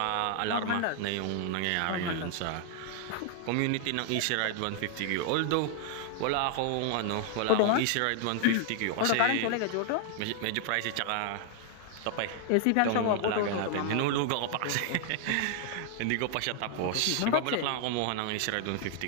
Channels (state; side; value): different; both; correlation 0.00